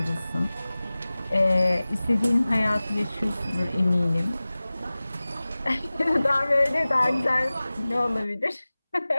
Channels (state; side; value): inverted; both; correlation -0.98